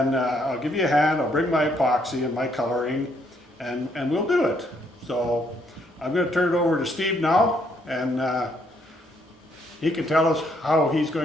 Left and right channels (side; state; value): both; normal; correlation 0.71